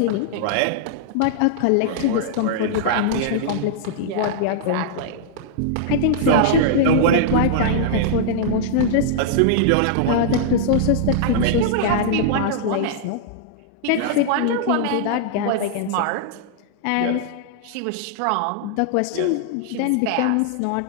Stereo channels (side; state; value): both; different; correlation -0.01